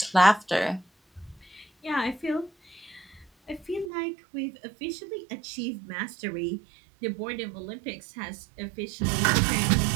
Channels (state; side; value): drops out; left; at 3.9 s